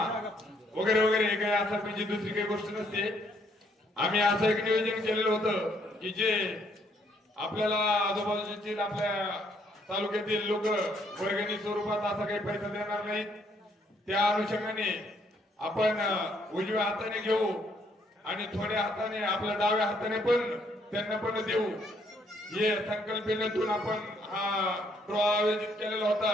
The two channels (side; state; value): both; normal; correlation 0.69